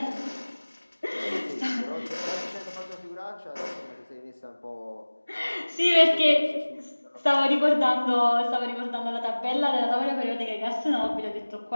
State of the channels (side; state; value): both; inverted; correlation -1.00